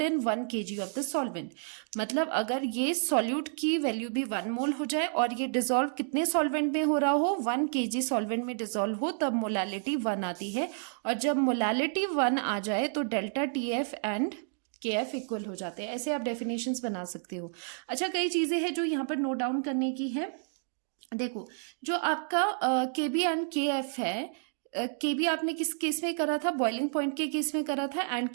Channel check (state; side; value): silent; left; digital silence